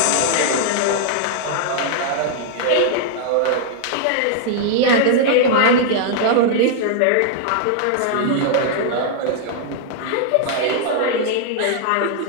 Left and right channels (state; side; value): different; both; correlation -0.01